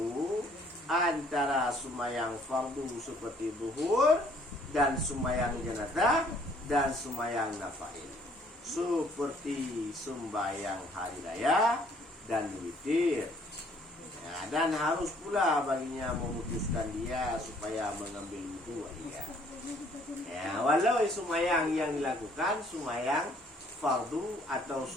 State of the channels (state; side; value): normal; both; correlation 0.61